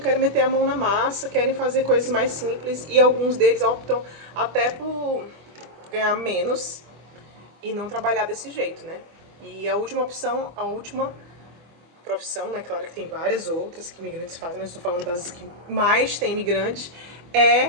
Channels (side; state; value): left; late; 24 ms